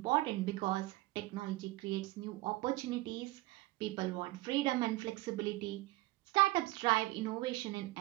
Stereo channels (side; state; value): left; quieter; 19.3 dB